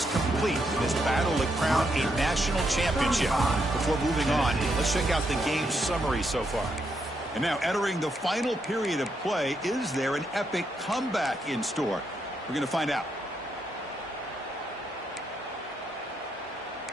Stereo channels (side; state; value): both; normal; correlation 0.79